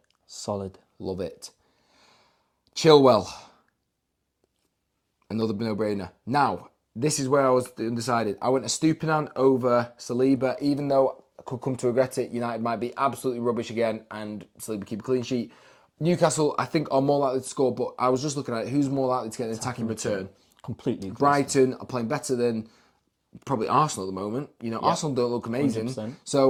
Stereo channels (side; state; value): both; identical; correlation 1.00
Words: Solid. Love it. Chilwell. Another no-brainer. Now, this is where I was undecided. I went a Stupinan over Saliba, even though I could come to regret it. United might be absolutely rubbish again and Saliba keep a clean sheet. Newcastle, I think, are more likely to score, but I was just looking at it. Who's more likely to get an attacking return? Completely. Brighton are playing better than probably Arsenal at the moment. You know, Arsenal don't look amazing. 100%.